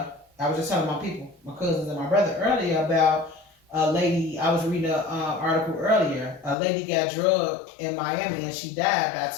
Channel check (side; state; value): right; drops out; at 6.6 s